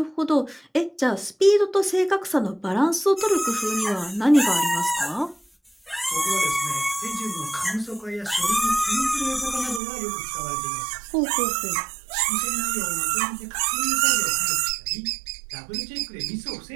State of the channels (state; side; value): drops out; left; at 9.8 s